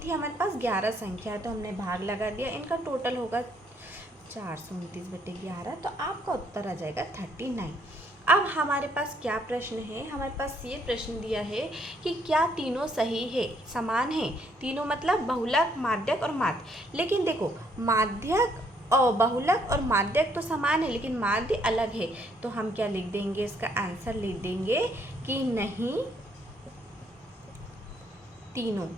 थी हमारे पास 11 संख्या, तो हमने भाग लगा दिया, इनका टोटल होगा 429/11, तो आपका उत्तर आ जाएगा 39। अब हमारे पास क्या प्रश्न है, हमारे पास ये प्रश्न दिया है कि क्या तीनों सही है, समान है, तीनों मतलब बहुलक माध्यक और माध्य। लेकिन देखो माध्यक और बहुलक और माध्यक तो समान है लेकिन माध्य अलग है, तो हम क्या लिख देंगे, इसका आंसर लिख देंगे कि नहीं तीनों,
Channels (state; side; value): normal; both; correlation 0.69